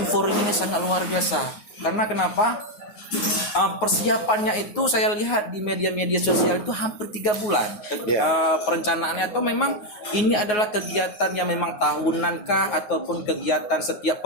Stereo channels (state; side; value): late; right; 9.5 ms